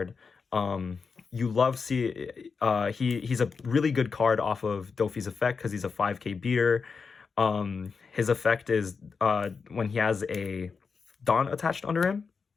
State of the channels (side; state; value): right; quieter; 5.2 dB